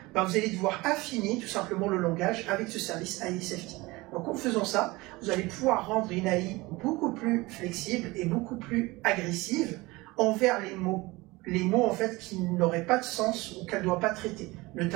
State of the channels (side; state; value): left; quieter; 21.8 dB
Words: ben vous allez devoir affiner tout simplement le langage avec ce service AI Safety. Donc en faisant ça, vous allez pouvoir rendre une AI beaucoup plus flexible et beaucoup plus agressive envers les mots en fait qui n'auraient pas de sens ou qu'elle ne doit pas traiter,